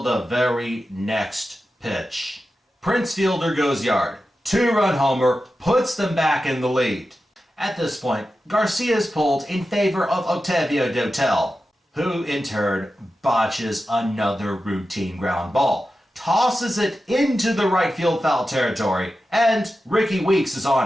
the very next pitch. Prince Fielder goes yard. 2-run homer puts them back in the lead. At this point, Garcia is pulled in favor of Octavio Dotel, who in turn botches another routine ground ball, tosses it into the right field foul territory, and Ricky Weeks is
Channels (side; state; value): both; normal; correlation 0.92